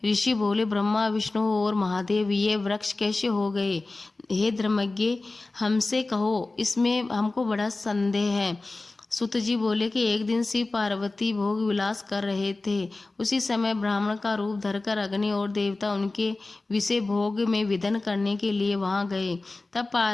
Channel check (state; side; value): quieter; right; 3.3 dB